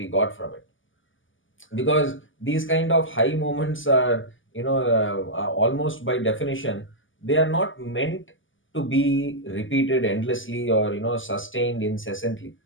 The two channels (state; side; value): late; right; 0.57 ms